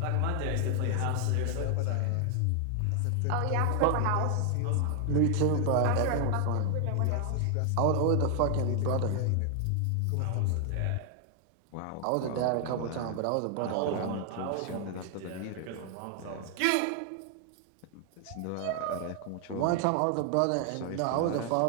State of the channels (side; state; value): both; different; correlation 0.00